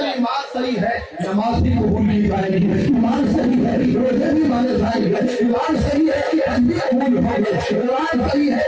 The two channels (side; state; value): both; identical; correlation 1.00